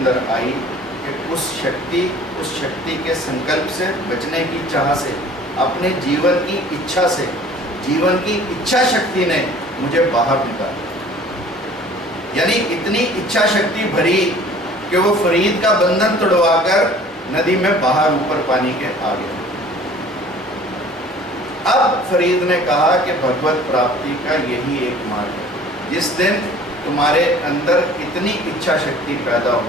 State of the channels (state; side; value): normal; both; correlation 0.49